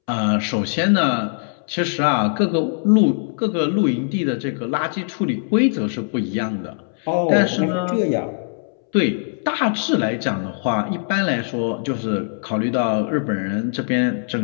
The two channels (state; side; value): silent; right; 65 dB below the other